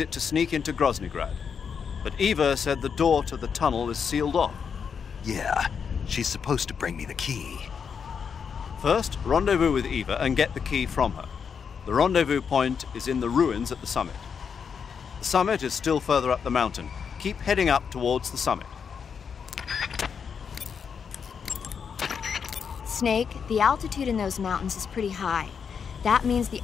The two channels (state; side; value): quieter; right; 6.6 dB